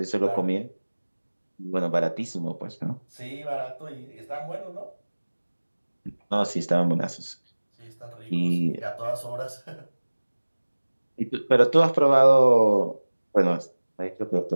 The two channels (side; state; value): both; inverted; correlation -1.00